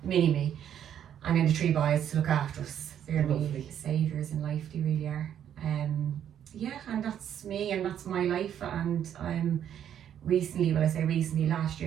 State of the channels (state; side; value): quieter; left; 9.7 dB